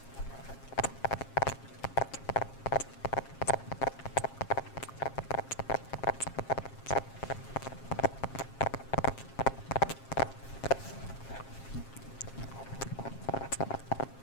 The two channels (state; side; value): late; right; 7.5 ms